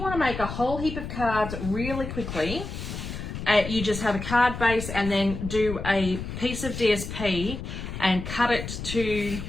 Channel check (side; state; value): left; noise; rumble, 7 dB below the sound